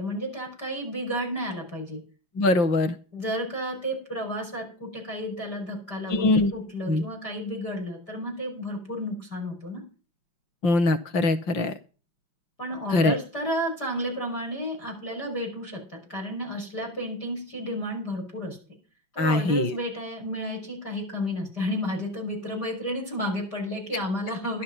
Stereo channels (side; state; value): right; late; 5.7 ms